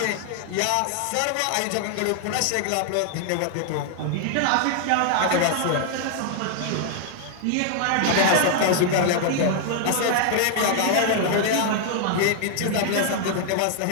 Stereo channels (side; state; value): both; different; correlation 0.00